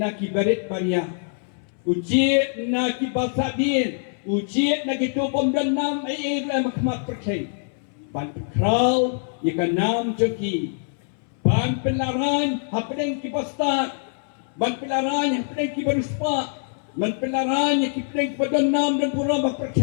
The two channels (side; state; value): right; silent; 63 dB below the other